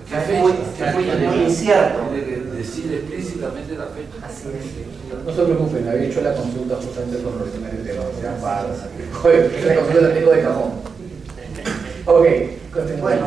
Es muy incierto. Decir explícitamente la fecha. Así es. No se preocupen, había hecho la consulta justamente con los temas de tema. Joder, la consulta la tengo de cajón. Ok, continúa.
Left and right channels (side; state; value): left; quieter; 5.4 dB